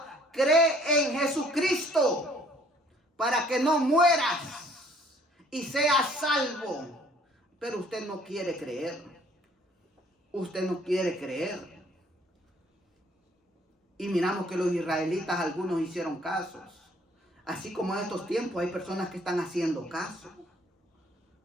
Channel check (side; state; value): both; normal; correlation 0.59